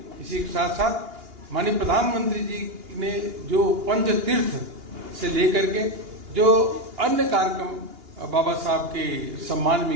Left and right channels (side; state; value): left; late; 2.8 ms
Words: इसी के साथ साथ माननीय प्रधानमंत्री जी ने जो पंच तीर्थ से लेकर के जो अन्य कार्यक्रम बाबा साहब के सम्मान